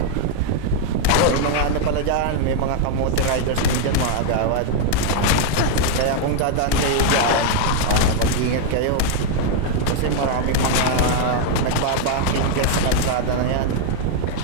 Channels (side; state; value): both; different; correlation 0.00